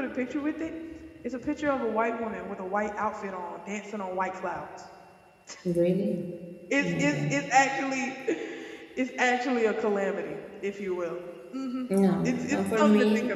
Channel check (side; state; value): both; identical; correlation 1.00